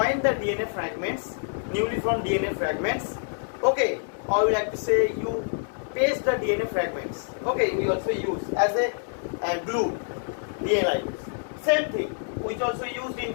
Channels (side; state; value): right; silent; 60 dB below the other